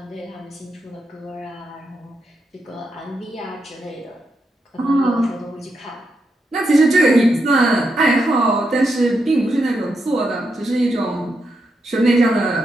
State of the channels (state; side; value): normal; both; correlation 0.83